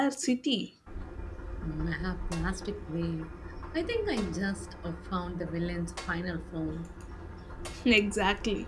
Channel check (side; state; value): both; identical; correlation 1.00